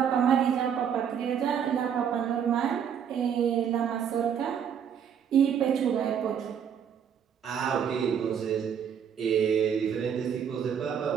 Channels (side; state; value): left; quieter; 8.1 dB